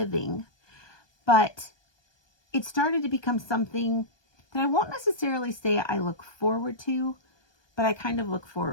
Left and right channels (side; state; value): right; late; 1.2 ms